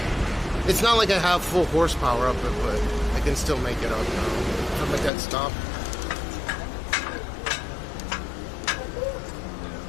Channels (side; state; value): right; drops out; at 5.1 s